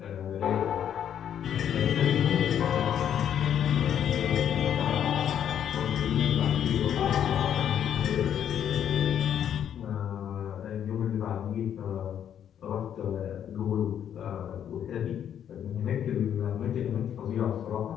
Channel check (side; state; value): right; quieter; 9.4 dB